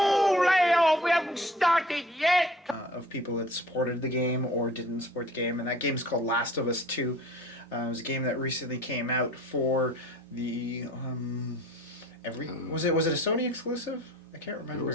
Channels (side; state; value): both; normal; correlation 0.48